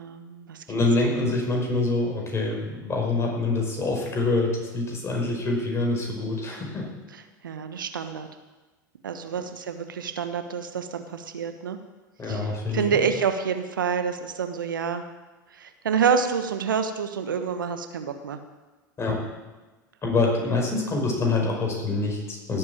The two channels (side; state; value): both; normal; correlation 0.16